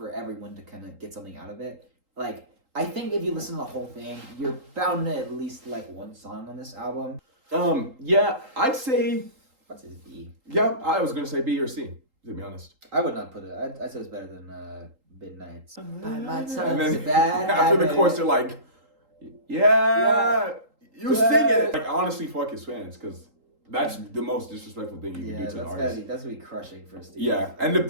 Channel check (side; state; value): left; late; 3.8 ms